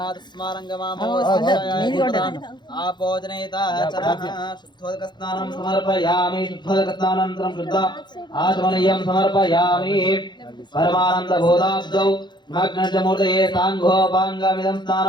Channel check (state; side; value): late; right; 0.21 ms